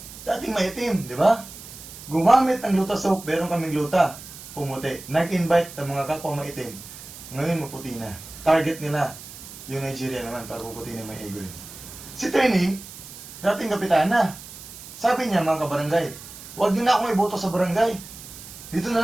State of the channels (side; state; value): right; noise; hiss, 15 dB below the sound